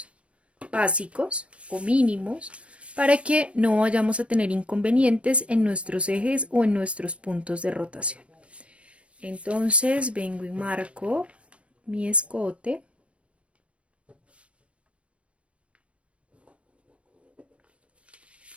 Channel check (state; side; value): late; left; 0.061 ms